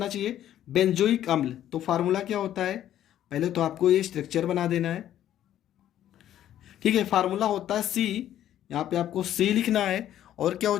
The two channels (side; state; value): right; quieter; 11.6 dB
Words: चाहिए? बेंजोइक अम्ल। तो फार्मूला क्या होता है? पहले तो आपको ये स्ट्रक्चर बना देना है, ठीक है। फार्मूला होता है C, यहाँ पे आपको C लिखना है। और क्या हो